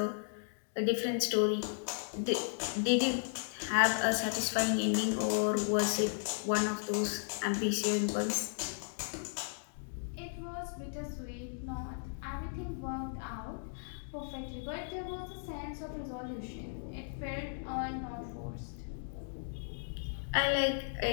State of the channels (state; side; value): silent; right; digital silence